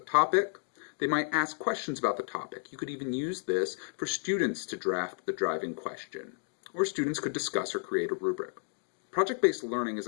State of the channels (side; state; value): right; silent; digital silence